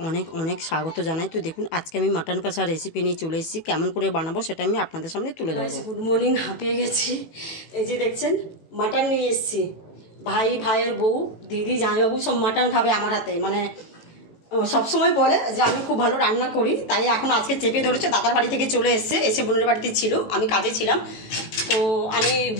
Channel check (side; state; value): right; late; 18 ms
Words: অনেক অনেক স্বাগত জানাই। তো দেখুন, আজকে আমি মাটন কষা রেসিপি নিয়ে চলে এসেছি। কেমন করে বানাবো সেটা আমি আপনাদের সামনে তুলে ধরবো। গুড মর্নিং, হাঁপিয়ে গেছি। এই যে দেখছেন, মাটন নিয়ে এসেছি। ভাইয়ের বউ, দিদি, জামাইবাবু সব মাটন খাবে আমার হাতে। মানে সবসময় বলে যে আমি খুব ভালো রান্না করি, তাই এখন আজকে চেপে ধরেছে। দাদার বাড়ি থেকে চলে এসে বোনের বাড়িতে ছিল, আমি কাজে ছিলাম। তো আমি